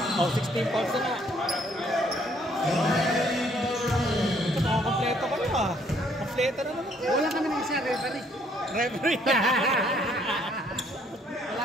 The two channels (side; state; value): both; normal; correlation 0.65